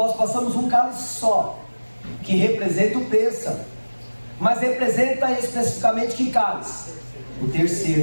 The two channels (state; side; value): inverted; both; correlation -1.00